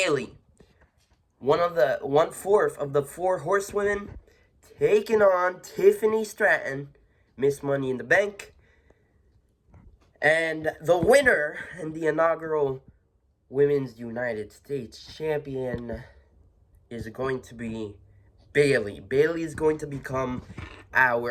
1/4 of the 4 horsewomen taking on Tiffany Stratton, Miss Money in the Bank. And the winner and the inaugural Women's United States Champion is going to be Bayley. Bayley is going to become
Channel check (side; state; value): both; identical; correlation 1.00